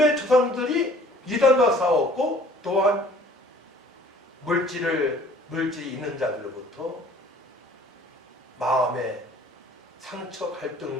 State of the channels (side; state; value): both; normal; correlation 0.53